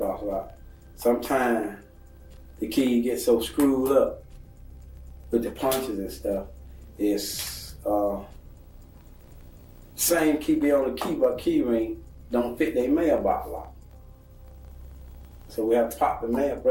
lock. Sometimes the key gets so screwed up with the punches and stuff. It's same key be on the key, but key ring don't fit their mailbox lock. So we have to pop the mail,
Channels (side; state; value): both; identical; correlation 1.00